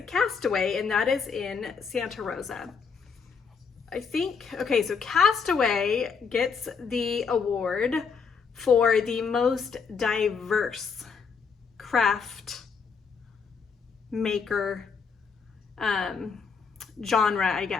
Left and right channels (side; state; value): right; quieter; 5.7 dB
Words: Castaway, and that is in Santa Rosa. I think, okay, so Castaway gets the award for the most diverse craft maker genre, I